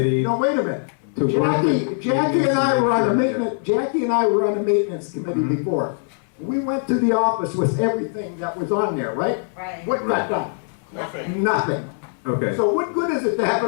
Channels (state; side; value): silent; right; 63 dB below the other